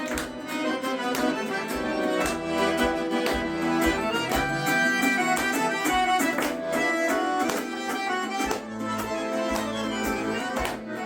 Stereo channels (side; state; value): both; identical; correlation 1.00